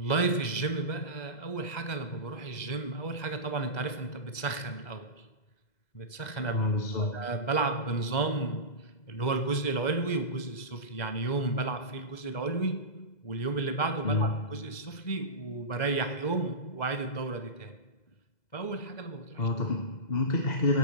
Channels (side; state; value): right; late; 2.0 ms